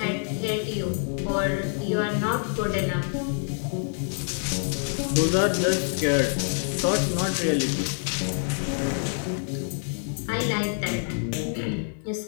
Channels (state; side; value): silent; right; 61 dB below the other